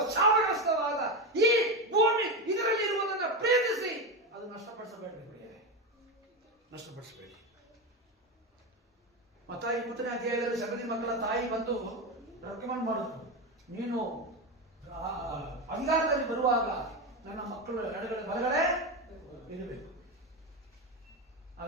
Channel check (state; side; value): normal; both; correlation 0.16